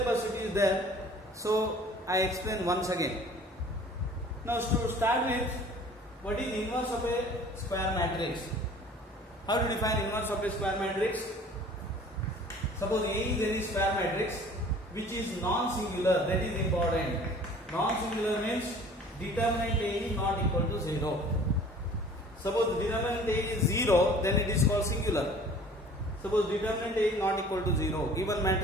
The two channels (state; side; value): normal; both; correlation 0.49